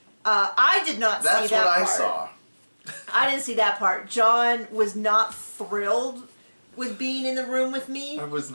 I did not see that part. That's what I saw. I didn't see that part. John was not thrilled with being in the room with me. I was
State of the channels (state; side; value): inverted; both; correlation -1.00